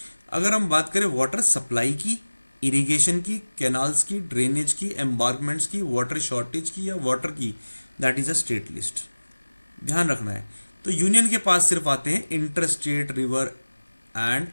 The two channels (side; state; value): both; inverted; correlation -1.00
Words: अगर हम बात करें वाटर सप्लाई की, इरिगेशन की, कैनाल्स की, ड्रेनेज की, एम्बार्कमेंट्स की, वाटर शॉर्टेज की या वाटर की, that is a state list. ध्यान रखना है। तो यूनियन के पास सिर्फ आते हैं inter state river and